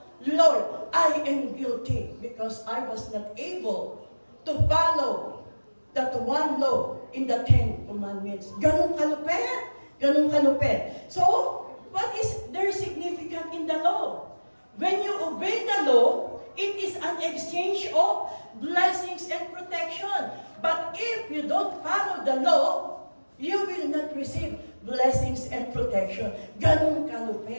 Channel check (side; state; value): both; inverted; correlation -1.00